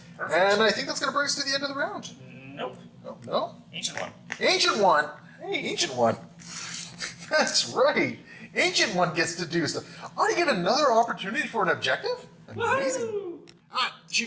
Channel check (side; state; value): both; identical; correlation 1.00